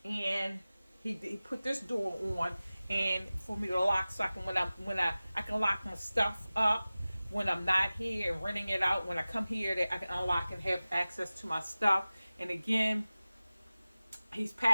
And he put this door on, and for me to lock, so I can I can lock my stuff up when I'm not here and renting it out. When I come here, that I can unlock and have access to my stuff. And again, he's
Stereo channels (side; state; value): both; inverted; correlation -0.97